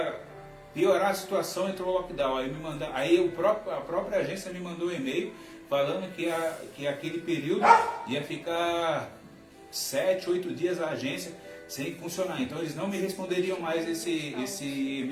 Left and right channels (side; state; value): both; identical; correlation 1.00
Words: piorar a situação, entrou o lockdown. Aí a própria agência me mandou um e-mail falando que aquele período ia ficar 7, 8 dias a agência sem funcionar. Então eles não me responderiam mais esse